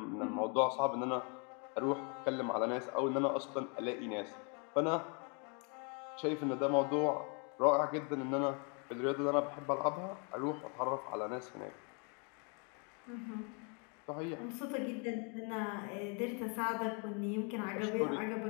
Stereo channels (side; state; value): right; quieter; 36.5 dB